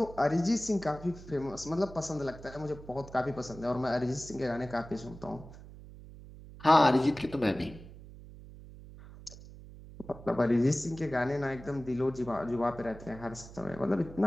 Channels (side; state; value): right; noise; hum, 16 dB below the sound